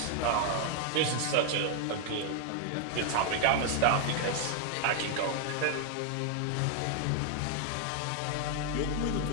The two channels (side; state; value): both; different; correlation 0.00